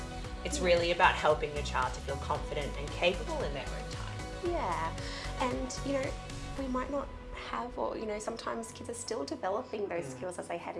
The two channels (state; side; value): identical; both; correlation 1.00